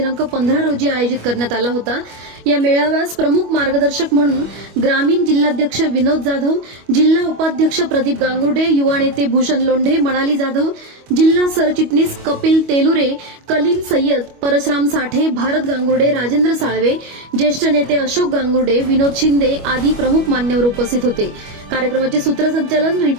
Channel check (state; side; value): late; left; 25 ms